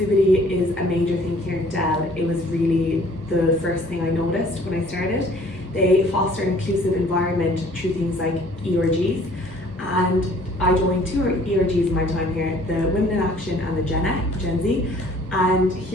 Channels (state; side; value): normal; both; correlation 0.55